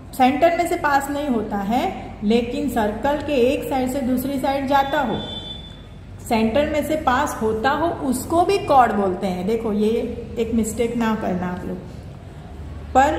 सेंटर में से पास नहीं होता है, लेकिन सर्कल के एक साइड से दूसरी साइड जाता हो, सेंटर में से पास होता हो, उसको भी कॉर्ड बोलते हैं। देखो ये एक मिस्टेक ना करना आप लोग।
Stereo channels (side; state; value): both; identical; correlation 1.00